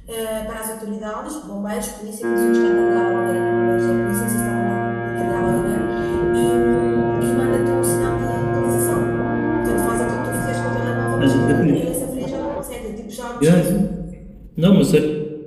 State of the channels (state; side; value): identical; both; correlation 1.00